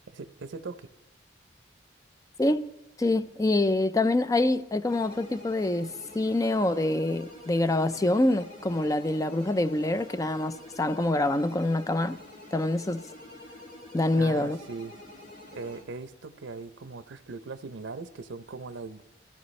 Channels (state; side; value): normal; both; correlation 0.78